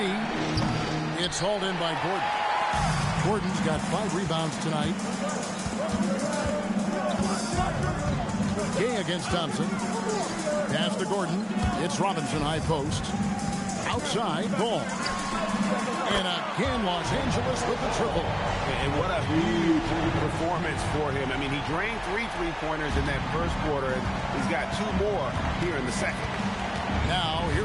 it's hauled in by Gordon. Gordon's got 5 rebounds tonight. Gay against Thompson. Pass to Gordon. It's Robinson, high post. Outside, ball. And again, Los Angeles with the triple. And what a huge performance for him. I mean, he drained 3 3-pointers in that first quarter, and he's got 2 more here in the second. Now,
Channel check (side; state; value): both; identical; correlation 1.00